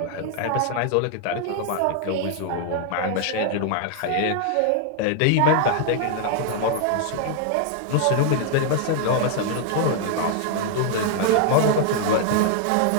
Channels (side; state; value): both; different; correlation 0.00